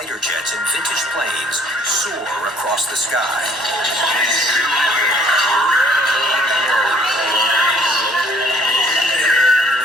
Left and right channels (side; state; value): both; normal; correlation 0.59